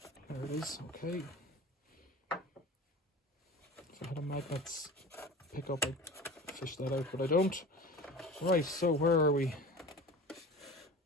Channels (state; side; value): normal; both; correlation 0.36